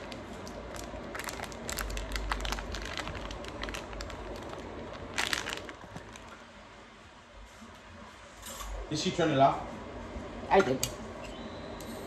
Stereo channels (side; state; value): both; identical; correlation 1.00